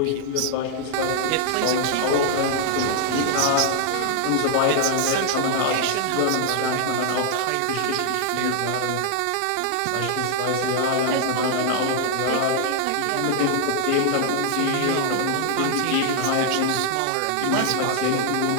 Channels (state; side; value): different; both; correlation -0.01